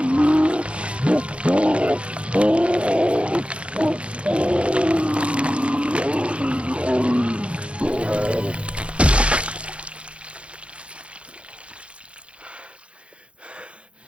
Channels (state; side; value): late; left; 0.060 ms